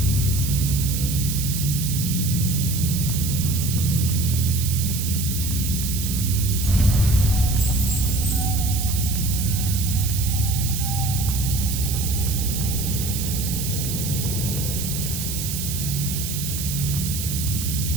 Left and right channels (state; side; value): noise; right; hiss, 5 dB below the sound